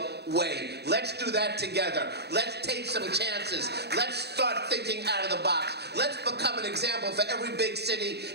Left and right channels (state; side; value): late; left; 0.48 ms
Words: way. Let's do that together. Let's take some chances. Let's start thinking out of the box. Let's become an example for every big city